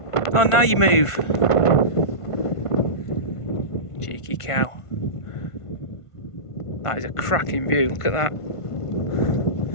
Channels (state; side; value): late; right; 1.5 ms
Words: Oh, now you move. Cheeky cow. That is a cracking view, look at that.